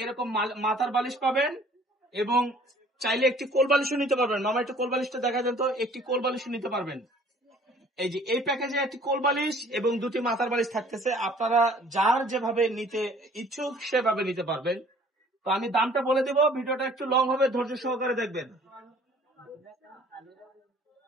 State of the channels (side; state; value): both; normal; correlation 0.54